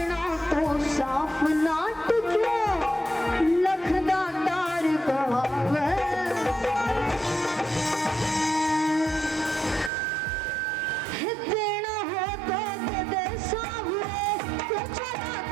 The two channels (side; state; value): left; drops out; at 9.9 s